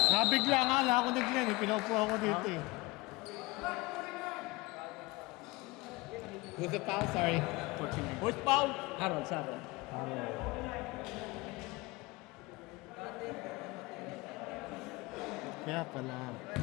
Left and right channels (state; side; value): quieter; right; 22.5 dB